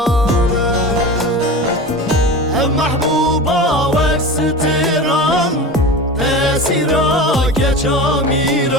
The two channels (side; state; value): both; normal; correlation 0.30